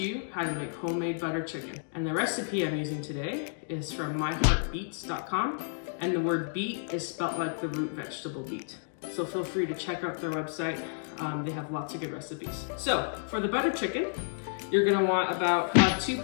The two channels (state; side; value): silent; right; digital silence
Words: how to make homemade butter chicken. And the recipe I'm using today is from myheartbeets.com, and the word beet is spelled like the root vegetable beet. So feel free to check out their website. They have lots of good recipes. So for the butter chicken, you're gonna want about 2